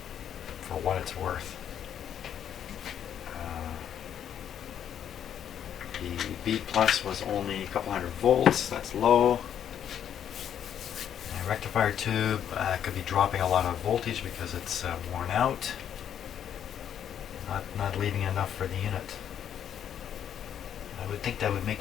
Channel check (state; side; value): quieter; right; 9.4 dB